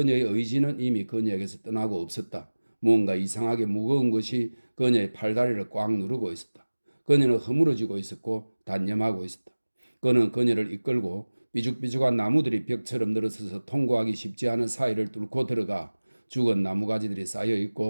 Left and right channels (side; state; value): both; inverted; correlation -1.00